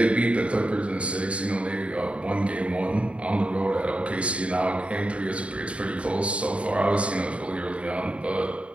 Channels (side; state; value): left; late; 0.062 ms